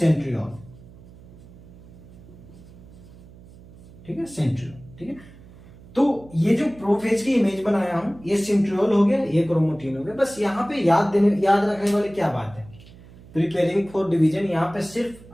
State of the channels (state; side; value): noise; right; hum, 21 dB below the sound